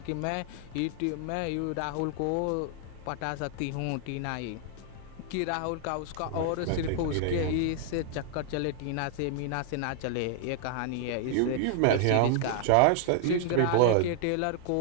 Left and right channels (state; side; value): different; both; correlation 0.00